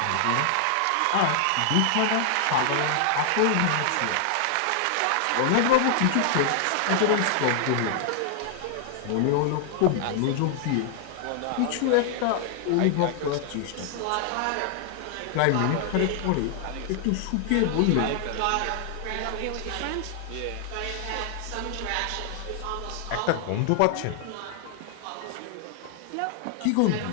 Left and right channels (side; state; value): both; different; correlation 0.00